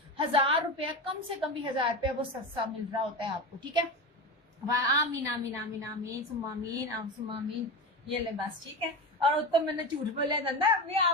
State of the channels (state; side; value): normal; both; correlation 0.22